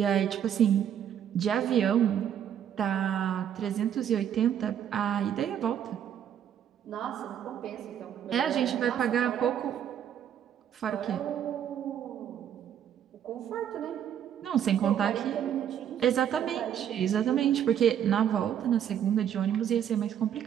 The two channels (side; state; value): left; quieter; 9.5 dB